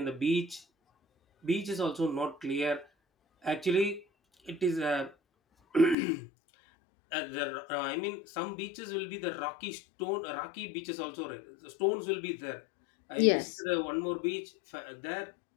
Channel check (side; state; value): right; drops out; at 6.0 s